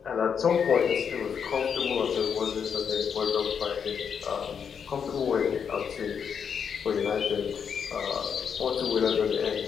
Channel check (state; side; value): quieter; right; 7.0 dB